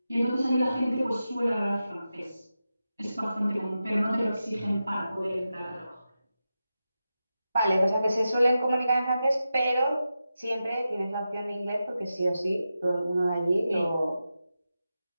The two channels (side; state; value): both; inverted; correlation -0.91